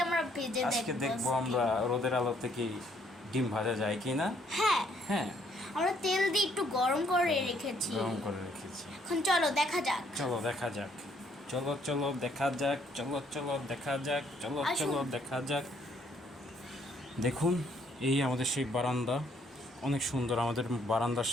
আমরা ভেজে দেখব। আজকে দেখবো আমরা রোদের আলো থেকে ডিম ভাজা যায় কিনা। হ্যাঁ হ্যাঁ, আমরা তেল দিয়ে একটু গরম করে রেখেছি। এখন চলো দেখা যাক। চলো দেখা যাক। দেখুন, এই আমাদের সেই বারান্দা, অনেক সুন্দর। আমাদের বারান্দার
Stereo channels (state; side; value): normal; both; correlation 0.67